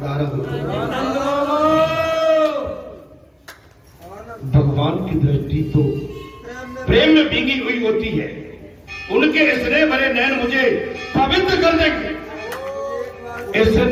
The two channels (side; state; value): both; identical; correlation 1.00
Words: आ रहा होता, भगवान की दृष्टि तो प्रेम में भीगी हुई होती है। उनके स्नेह भरे नैन मुझे पवित्र कर देंगे,